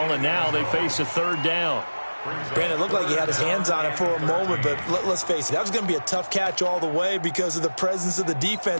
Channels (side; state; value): both; inverted; correlation -1.00